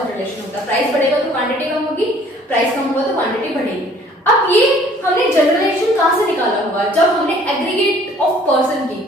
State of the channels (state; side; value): normal; both; correlation 0.56